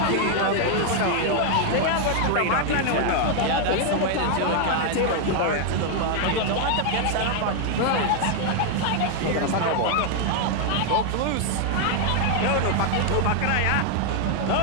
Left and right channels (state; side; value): different; both; correlation 0.00